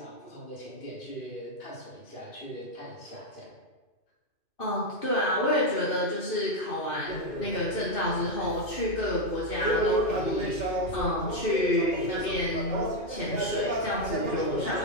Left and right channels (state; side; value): late; right; 2.5 ms